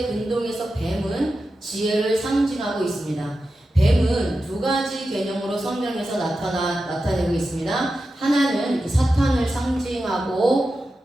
근동에서 뱀은 지혜를 상징하고 있습니다. 뱀은 두 가지 개념으로 성경에서 나타내고 있습니다. 하나는 사탄을 상징하고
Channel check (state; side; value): normal; both; correlation 0.91